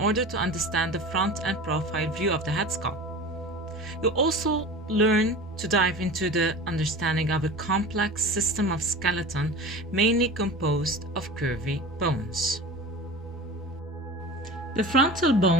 to understand the front and profile view of the head skull. You'll also learn to dive into the understanding of a complex system of skeleton mainly composed of curvy bones. The frontal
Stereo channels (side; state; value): both; normal; correlation 0.34